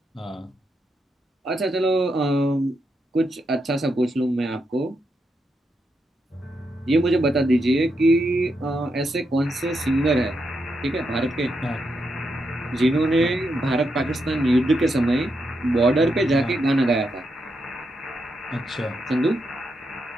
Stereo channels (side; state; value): both; normal; correlation 0.83